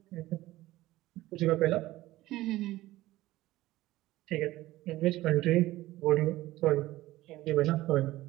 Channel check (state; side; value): quieter; left; 16.9 dB